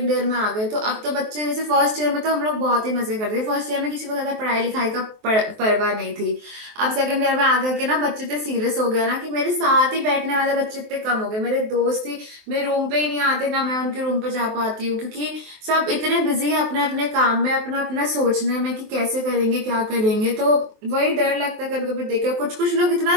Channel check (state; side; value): late; left; 23 ms